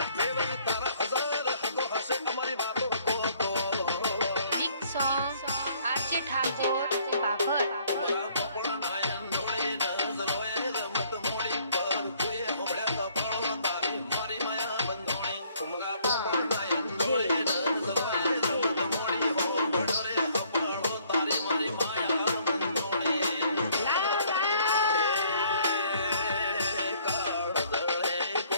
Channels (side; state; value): both; inverted; correlation -0.62